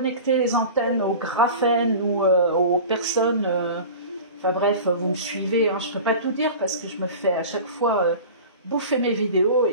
les antennes au graphène ou aux personnes. Enfin bref, vous me suivez, hein, je ne peux pas tout dire parce que je me fais à chaque fois bouffer mes vidéos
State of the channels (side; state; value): both; inverted; correlation -0.37